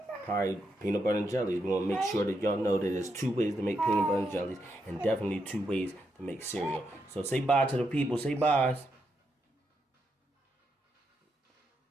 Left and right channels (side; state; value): both; normal; correlation 0.82